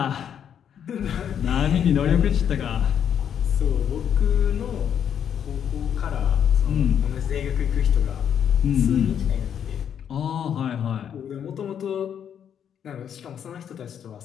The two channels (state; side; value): quieter; right; 8.7 dB